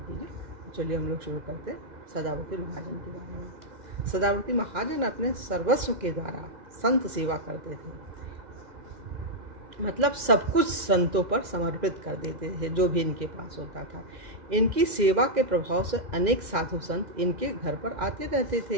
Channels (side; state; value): left; late; 2.0 ms